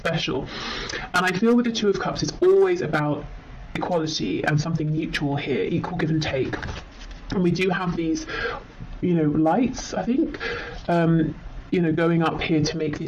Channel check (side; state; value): both; identical; correlation 1.00